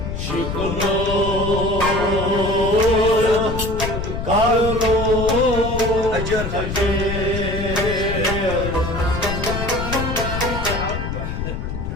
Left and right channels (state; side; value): noise; left; rumble, 4 dB below the sound